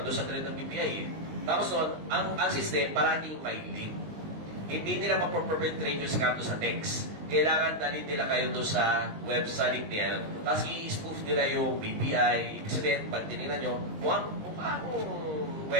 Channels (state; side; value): late; left; 19 ms